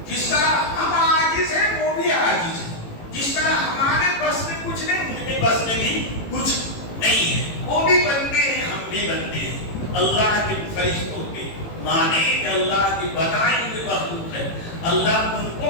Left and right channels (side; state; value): right; late; 18 ms